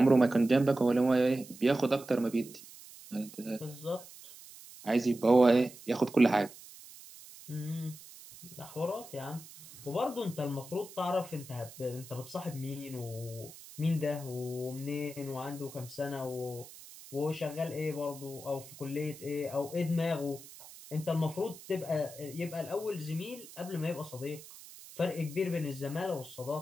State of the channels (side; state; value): right; noise; hiss, 17 dB below the sound